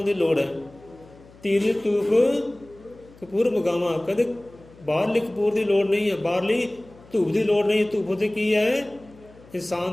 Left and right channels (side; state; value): left; noise; hum, 24 dB below the sound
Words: ਦੀ ਲੋੜ ਹੈ। ਧੀਰਜ ਧੂਫ ਕਪੂਰ ਮਗਾਵਾਂ, ਕਹਿੰਦੇ ਬਾਹਰਲੀ ਕਪੂਰ ਦੀ ਲੋੜ ਨਹੀਂ ਹੈ, ਬਾਹਰਲੀ ਧੂਪ ਦੀ ਲੋੜ ਨਹੀਂ ਹੈ। ਧੂਪ ਉੱਤੇ ਕੀ ਹੈ? ਇਨਸਾਨ